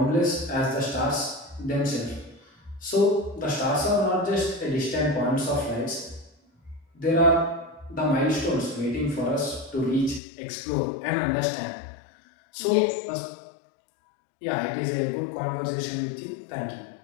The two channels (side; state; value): right; drops out; at 10.2 s